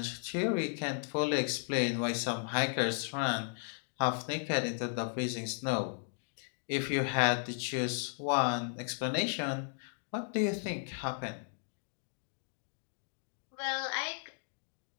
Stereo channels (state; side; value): silent; right; digital silence